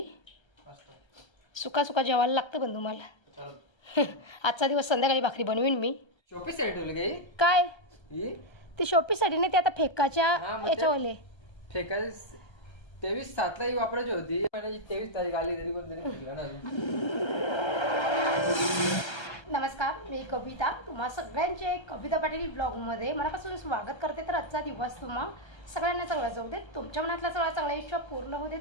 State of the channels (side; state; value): right; late; 1.3 ms